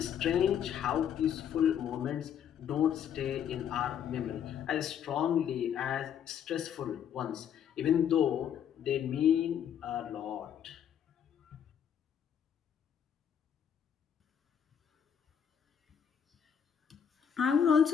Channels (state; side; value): quieter; right; 8.6 dB